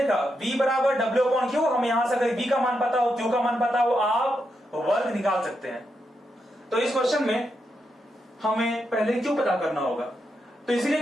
V बराबर W/Q। हम यहां से अगर V का मान पता हो, Q का मान पता हो, आप वर्क निकाल सकते हैं। तो इस क्वेश्चन में हमें पहले Q पता करना होगा, तो इसीलिए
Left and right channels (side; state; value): both; normal; correlation 0.84